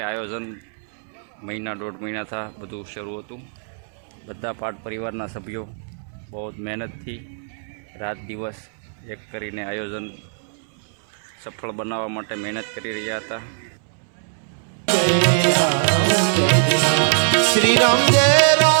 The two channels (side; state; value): left; silent; 64 dB below the other